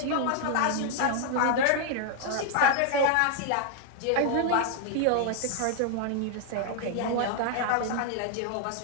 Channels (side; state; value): both; different; correlation 0.00